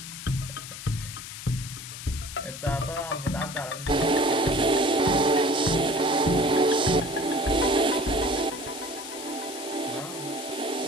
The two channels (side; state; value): left; noise; hiss, 11 dB below the sound